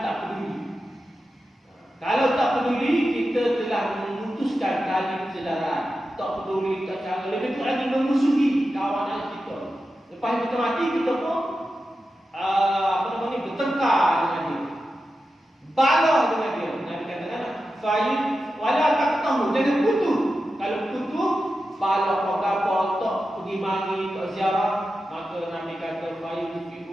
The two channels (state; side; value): normal; both; correlation 0.91